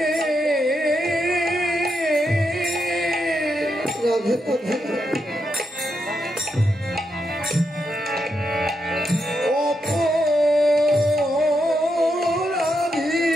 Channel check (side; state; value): both; normal; correlation 0.83